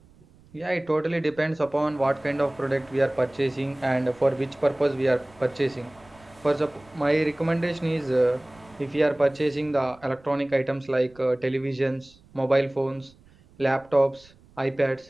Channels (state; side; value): noise; right; rumble, 27 dB below the sound